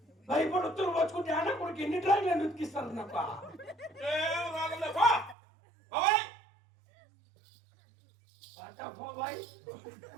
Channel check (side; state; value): left; drops out; at 5.4 s